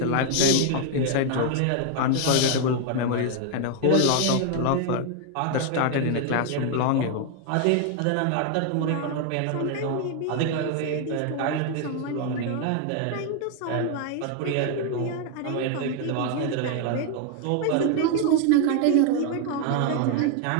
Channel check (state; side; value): different; both; correlation 0.00